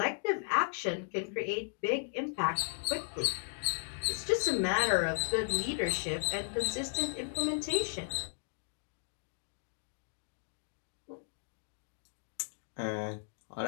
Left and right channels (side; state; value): right; silent; digital silence